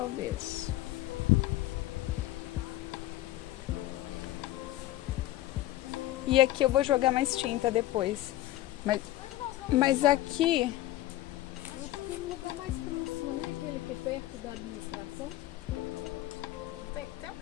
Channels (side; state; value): right; quieter; 15.2 dB